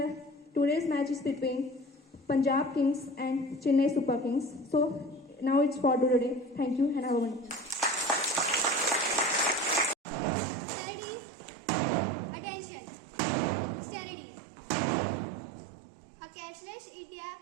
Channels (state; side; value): drops out; left; at 10.0 s